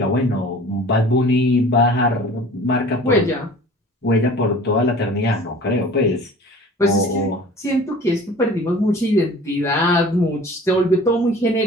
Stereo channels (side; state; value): both; normal; correlation 0.45